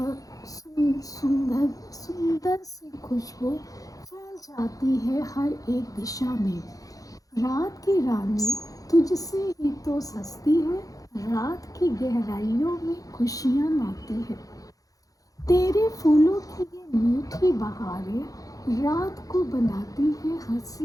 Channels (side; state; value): right; late; 0.17 ms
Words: सुंदर सी खुशबू फैल जाती है हर एक दिशा में। रात की रानी तुझसे ही तो सस्ती है, रात की गहराइयों में खुशियाँ लाती है। तेरे फूलों की ये मीठी बहारें रात को बनाती है